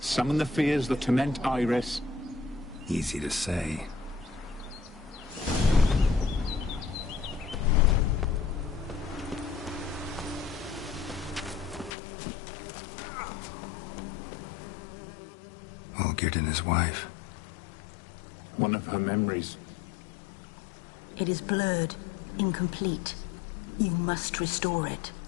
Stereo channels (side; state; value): right; drops out; at 11.9 s